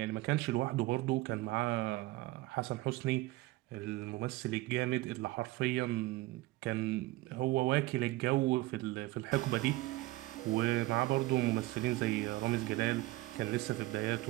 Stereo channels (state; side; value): quieter; left; 19.1 dB